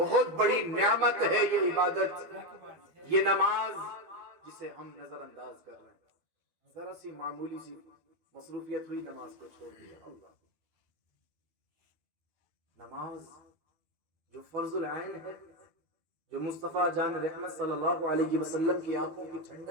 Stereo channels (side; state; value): left; late; 12 ms